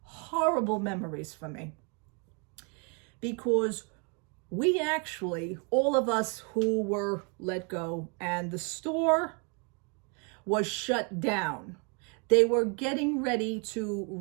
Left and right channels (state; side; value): quieter; left; 34.6 dB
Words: horrible memories for me. Because we actually, all of us who were let go, and the store was shut down. They were getting ready to